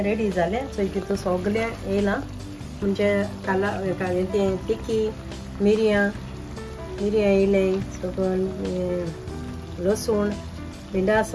रेडी जालें सो तितून सगलें येयलां म्हणजे काला तें तिकी मिरयां येयलें सकून लसूण भिंडा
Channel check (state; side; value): identical; both; correlation 1.00